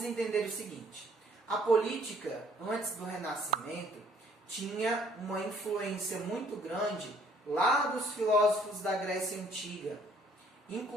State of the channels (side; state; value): both; normal; correlation 0.61